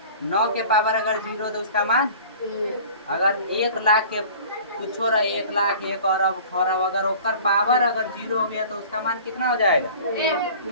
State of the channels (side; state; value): both; inverted; correlation -0.44